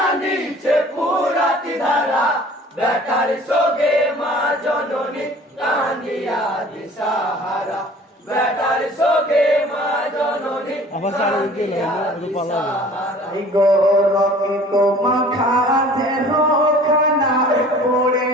ফুরাত ধারা বেটার শোকে মা জননী কাঁদিয়া দিশাহারা বেটার শোকে মা জননী কাঁদিয়া দিশাহারা গৌরকিত মাখা দেহ খানা পড়ে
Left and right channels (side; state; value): both; normal; correlation 0.48